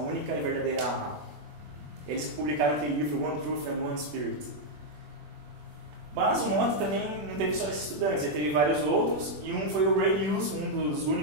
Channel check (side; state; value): left; late; 20 ms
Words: e verdadeira A. Eles publicaram aquele livro One Truth and One Spirit. Mas o Mota também não teve só esses estudantes, ele teve vários outros, e um foi o Ray Hughes, um dos